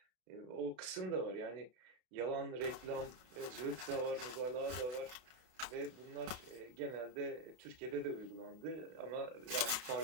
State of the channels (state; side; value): late; left; 32 ms